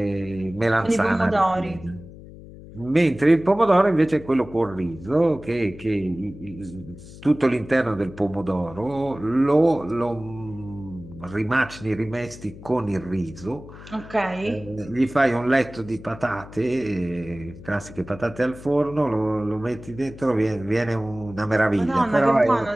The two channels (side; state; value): left; noise; hum, 17 dB below the sound